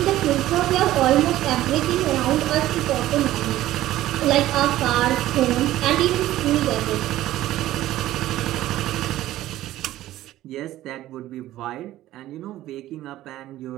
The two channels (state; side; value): quieter; left; 14.6 dB